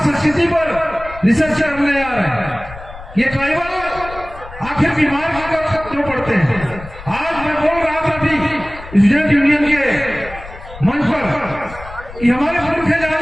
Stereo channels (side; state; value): left; noise; rumble, 15 dB below the sound